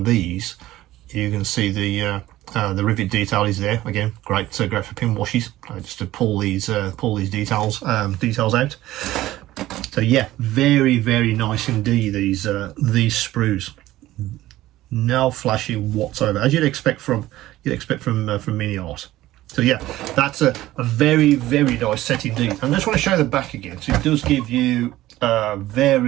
these, you can see the rivet detail is there. Again, great for pin washes, just to pull these details out. So yeah, very nice indeed. These sprues. No flashing whatsoever, as you'd expect from MiniArt. So yeah, that's a very nice set indeed. And I just want to show the back again. So it does give you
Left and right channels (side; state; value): left; quieter; 15.7 dB